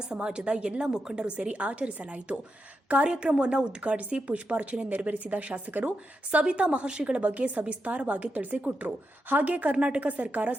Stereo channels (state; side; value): normal; both; correlation 0.86